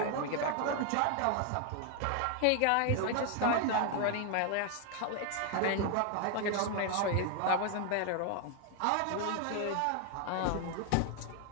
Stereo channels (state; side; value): different; both; correlation 0.00